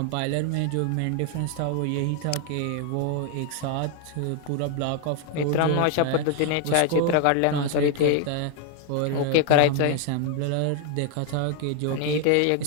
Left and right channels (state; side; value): different; both; correlation 0.00